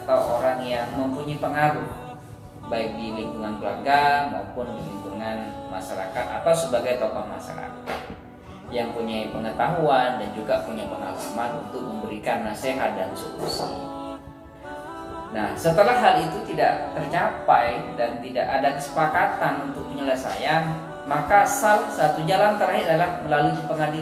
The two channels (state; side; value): identical; both; correlation 1.00